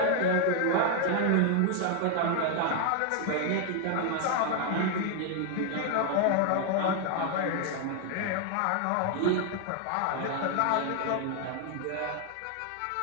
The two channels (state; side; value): different; both; correlation 0.00